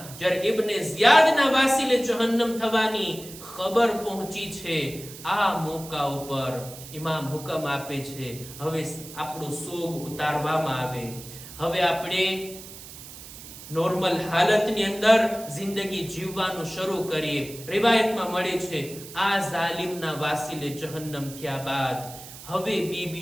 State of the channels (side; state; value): right; noise; hiss, 15 dB below the sound